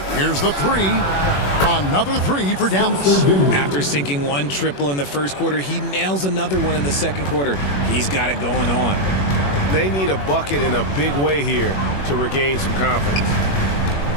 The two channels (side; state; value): right; late; 21 ms